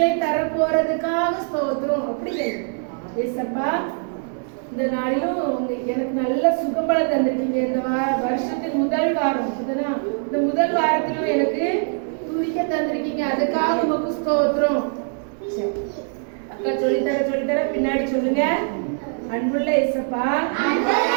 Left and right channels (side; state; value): left; silent; 56 dB below the other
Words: தர போறதுக்காக ஸ்தோத்திரம். அப்படி கேளுங்க. ஏசப்பா இந்த நாளிலும் எனக்கு நல்ல சுகம்பலம் தந்திருக்கீங்க. இந்த வருஷத்தின் முதல் வாரம் இந்த முதல் வாரத்திலும் எனக்கு துதிக்க தந்திருக்கீங்க, அதுக்காக உமக்கு ஸ்தோத்திரம். அக்கா சொல்லித்தர பின்னாடி சொல்லுங்க. அன்புள்ள ஏசப்பா